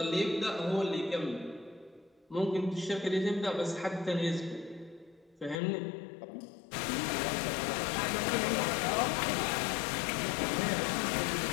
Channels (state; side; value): drops out; right; at 5.6 s